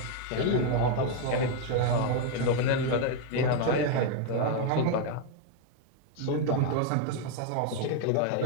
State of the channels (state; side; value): different; both; correlation 0.01